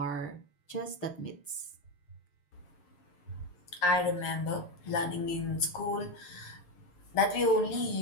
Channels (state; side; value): late; right; 6.7 ms